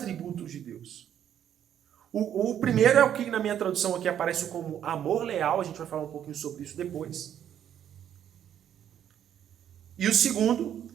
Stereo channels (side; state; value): left; quieter; 9.9 dB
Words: de Deus. O primeiro é o que na minha tradução aqui aparece como amor leal, a gente vai falar um pouquinho sobre isso depois. E o segundo